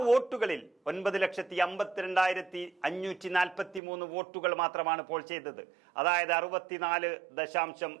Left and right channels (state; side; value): drops out; left; at 3.8 s